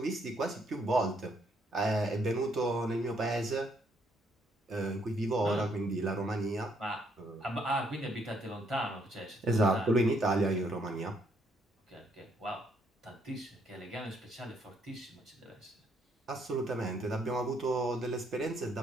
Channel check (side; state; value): both; normal; correlation 0.71